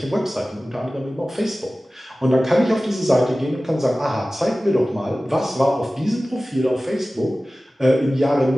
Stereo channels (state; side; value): normal; both; correlation 0.97